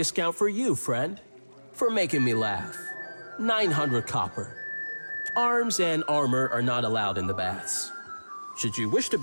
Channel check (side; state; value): both; inverted; correlation -1.00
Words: for you, friend, for making me laugh. 900 copper. Arms and armor are not allowed in the baths. Should you wish to